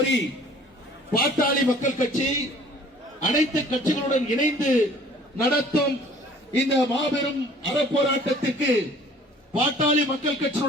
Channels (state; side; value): normal; both; correlation 0.52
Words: பாட்டாளி மக்கள் கட்சி அனைத்து கட்சிகளுடன் இணைந்து நடத்தும் இந்த மாபெரும் அறப்போராட்டத்திற்கு பாட்டாளி மக்கள்